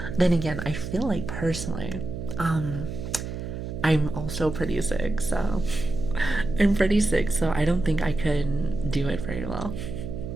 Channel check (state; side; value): noise; right; hum, 6 dB below the sound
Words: Then again, I feel like personally, I'm also pretty sick, so I don't think I could do it very well.